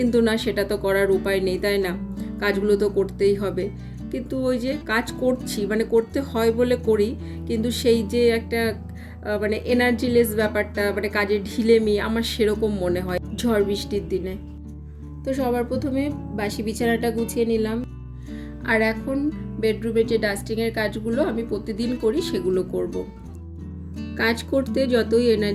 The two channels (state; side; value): identical; both; correlation 1.00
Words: না, সেটা তো করার উপায় নেই, তাই না? কাজগুলো তো করতেই হবে। কিন্তু ওই যে কাজ করছি, মানে করতে হয় বলে করি, কিন্তু সেই যে একটা মানে এনার্জিলেস ব্যাপারটা, মানে কাজের ঢিলেমি আমার সেরকম মনে হয় ঝড় বৃষ্টির দিনে। তো সবার প্রথমে বাসি বিছানাটা গুছিয়ে নিলাম। আর এখন বেডরুমের যে ডাস্টিংয়ের কাজগুলো আমি প্রতিদিন করি সেগুলো করব। কাজ করতে যতই